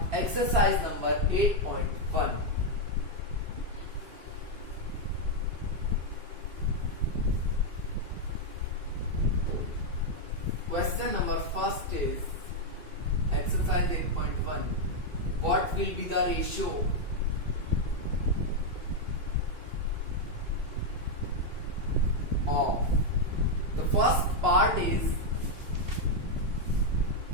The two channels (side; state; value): left; late; 2.5 ms